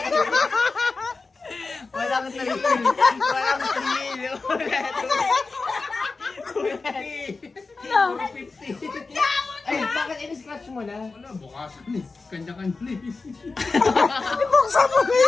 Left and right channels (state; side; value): quieter; right; 4.0 dB